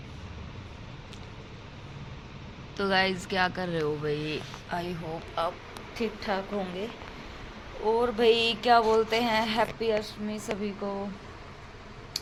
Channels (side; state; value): both; identical; correlation 1.00